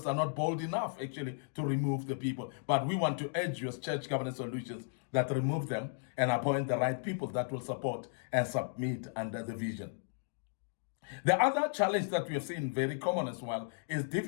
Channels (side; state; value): right; silent; digital silence